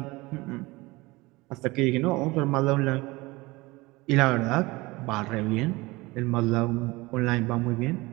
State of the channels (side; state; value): left; quieter; 22.1 dB